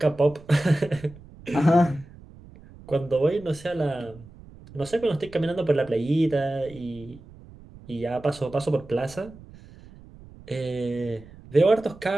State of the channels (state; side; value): noise; right; rumble, 20 dB below the sound